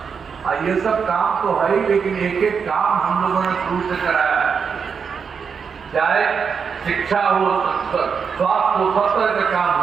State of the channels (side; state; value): left; quieter; 6.2 dB